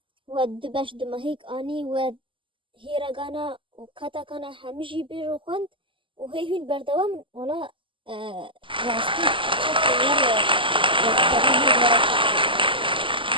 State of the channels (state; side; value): late; left; 0.25 ms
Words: و دبش دمهیک آنی و هیرگانا و کاتاکانا همیشی بیرو خوند و هین بردوام ولا راستی چک